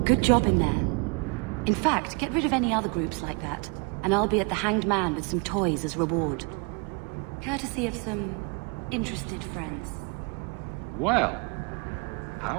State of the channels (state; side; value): quieter; left; 32.5 dB